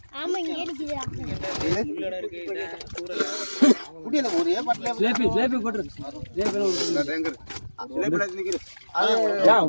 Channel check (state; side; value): inverted; both; correlation -1.00